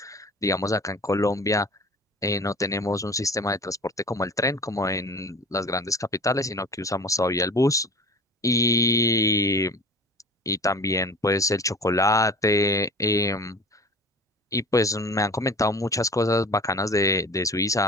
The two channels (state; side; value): normal; both; correlation 0.40